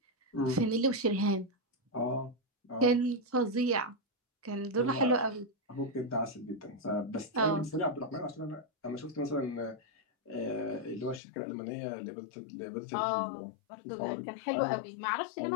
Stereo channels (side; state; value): right; drops out; at 11.2 s